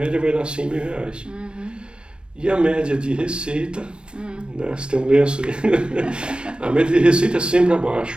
vai dar R$100 mil. E a média de receita, né, você tem um lenço aí, a média de receita é sempre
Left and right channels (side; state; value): left; late; 0.056 ms